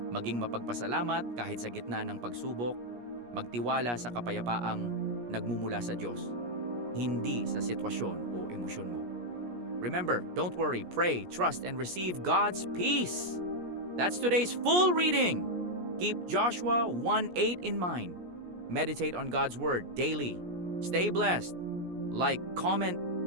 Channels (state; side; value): late; left; 17 ms